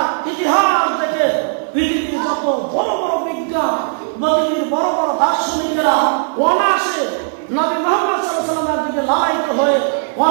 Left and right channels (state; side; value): silent; left; 59 dB below the other